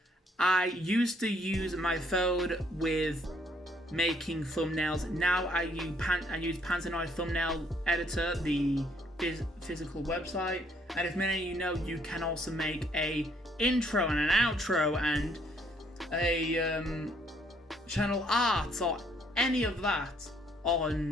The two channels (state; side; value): normal; both; correlation 0.67